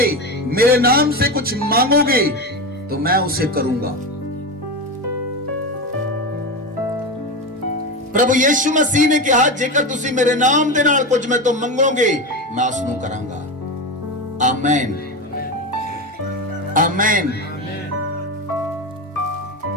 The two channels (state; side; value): normal; both; correlation 0.19